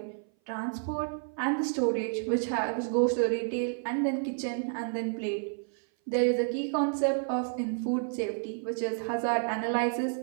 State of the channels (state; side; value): silent; left; 57 dB below the other